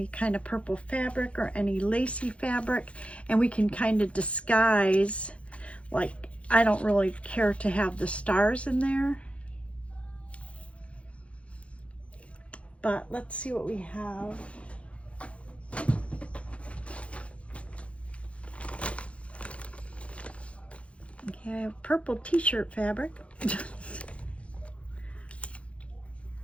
kind of purple fabric or any lacy fabric, and we can kind of disguise, like, I don't really care to have the stars in there, but let's see what we have. Okay, I have purple t-shirt fabric.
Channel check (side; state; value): right; late; 0.062 ms